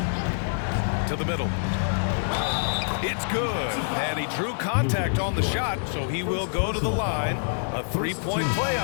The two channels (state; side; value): silent; right; digital silence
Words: To the middle. It's good. And he drew contact on the shot, so he will go to the line. A 3-point play